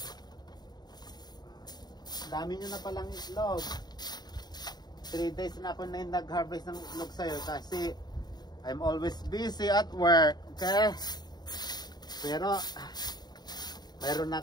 Dami nyo na palang itlog. 3 days na ako na nag-harvest ng itlog sa'yo kasi I'm always busy at work, okay? Pero mayroon na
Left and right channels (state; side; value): late; right; 0.20 ms